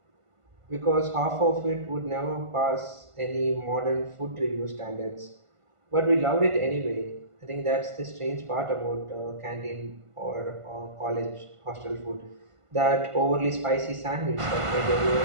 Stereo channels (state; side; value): late; left; 1.5 ms